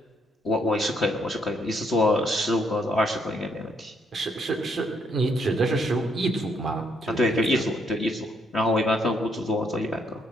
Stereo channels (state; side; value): normal; both; correlation 0.72